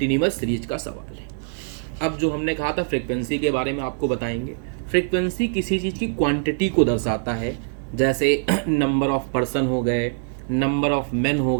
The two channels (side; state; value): left; silent; 63 dB below the other